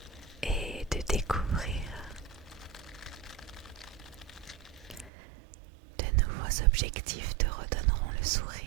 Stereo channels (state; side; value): drops out; left; at 5.1 s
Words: et de découvrir de nouveaux objectifs te redonneront le